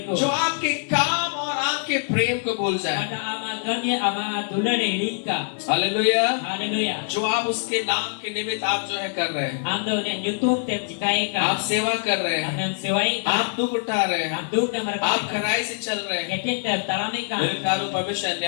को जो आपके काम और आपके प्रेम को भूल जाए। pada ama gami ama दुलरे हिड़ी का हालेलुया। हालेलुया जो आप उसके नाम के निमित्त आप जो है कर रहे हैं, आम द ने यूट्यूब ते जिकाए का आप सेवा कर रहे हैं, हमने सेवाई आप दुख उठा रहे हैं, हम दुख के मर आप खराई से चल रहे हैं, गेटे तलामे का मेरे प्यारो परमेश्वर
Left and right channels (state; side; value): silent; right; digital silence